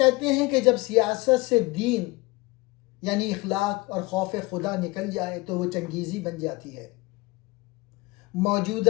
ہیں کہ جب سیاست سے دین یعنی اخلاق اور خوف خدا نکل جائے تو وہ چنگیزی بن جاتی ہے.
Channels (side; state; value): right; quieter; 23.1 dB